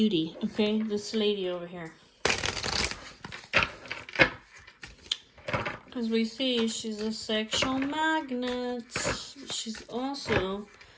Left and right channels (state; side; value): identical; both; correlation 1.00